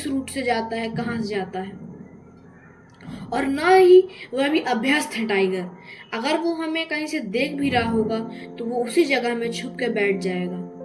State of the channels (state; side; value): identical; both; correlation 1.00